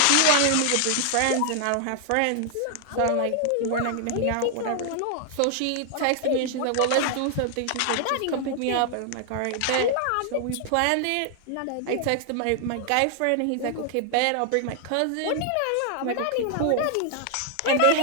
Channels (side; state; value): both; different; correlation 0.00